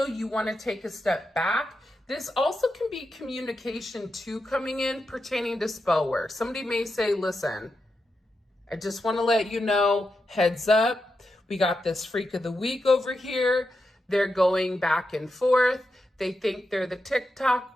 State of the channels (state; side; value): normal; both; correlation 0.87